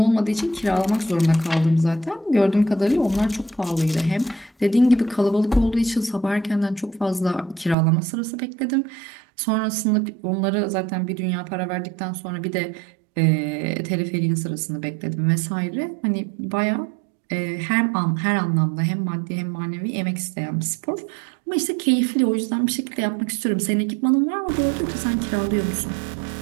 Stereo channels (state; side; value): drops out; left; at 7.8 s